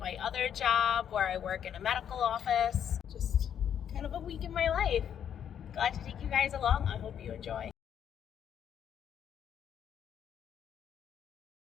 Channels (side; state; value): right; quieter; 9.0 dB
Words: my other job where I work in a medical office. Just kind of a week in my life. Glad to take you guys along. I hope you enjoy.